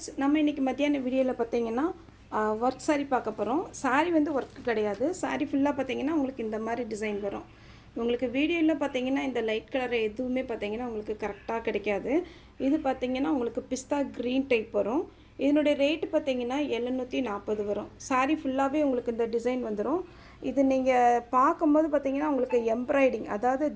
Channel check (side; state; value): both; identical; correlation 1.00